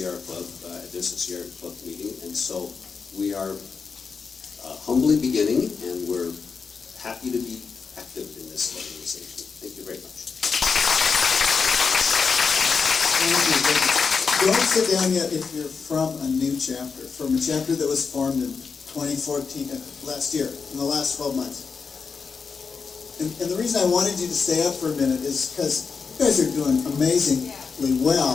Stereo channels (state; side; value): quieter; right; 5.3 dB